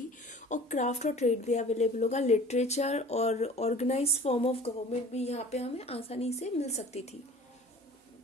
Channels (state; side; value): normal; both; correlation 0.45